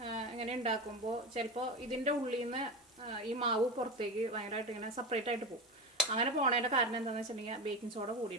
ഇങ്ങനെ ഉണ്ടാക്കുമ്പോൾ ചിലപ്പോൾ ഇതിൻ്റെ ഉള്ളിൽ നിന്ന് ഈ മാവ് പുറത്തേക്ക് ഭയങ്കരമായിട്ട് ഇങ്ങനെ സെപ്പറേറ്റ് ആയിട്ട് പോകും. അങ്ങനെ പോണതിൻ്റെ കാരണം എന്താണെന്ന് വെച്ചിട്ടുണ്ടെങ്കിൽ ബേക്കിംഗ് സോഡ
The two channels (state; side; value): normal; both; correlation 0.22